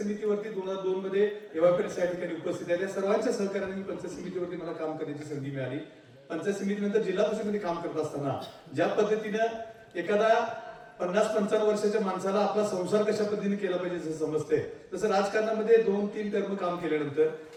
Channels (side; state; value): both; identical; correlation 1.00